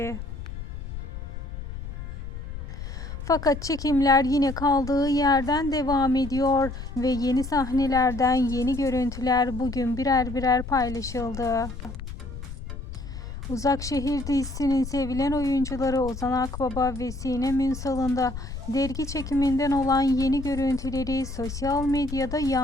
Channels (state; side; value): noise; left; rumble, 9 dB below the sound